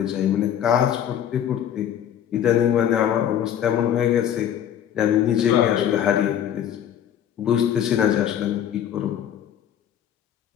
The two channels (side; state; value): right; quieter; 9.9 dB